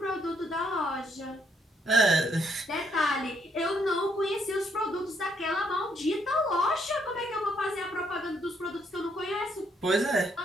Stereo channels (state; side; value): normal; both; correlation 0.72